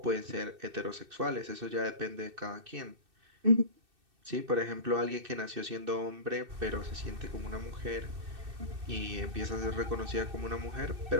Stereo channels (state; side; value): late; left; 2.6 ms